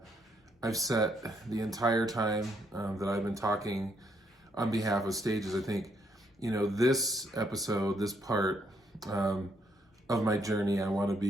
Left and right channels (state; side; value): normal; both; correlation 0.73